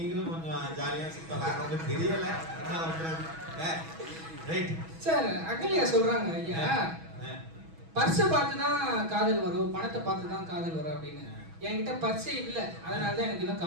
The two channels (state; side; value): late; left; 6.2 ms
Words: கொஞ்சம் ஜாலியா சுத்தலாம். உங்களுக்கு தெரியல என்ன பண்றது. Right sir. அகல்யா சொல்றாங்க, ஐயா பர்ஸை பார்த்து தான் காதல் வரும், பணத்தை பார்த்து தான் காதல் வரும் அப்படின்னு. என்கிட்ட பர்ஸே இல்ல, அதனால தான் எனக்கு இன்னும்